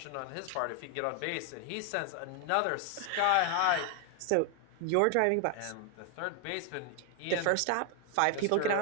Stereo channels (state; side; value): different; both; correlation 0.00